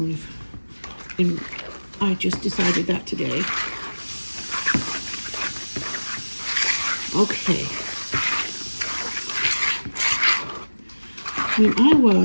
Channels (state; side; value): inverted; both; correlation -1.00